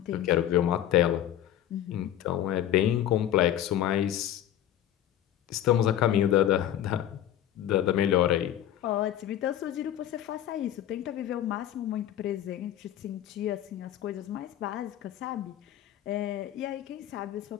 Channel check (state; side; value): quieter; right; 11.7 dB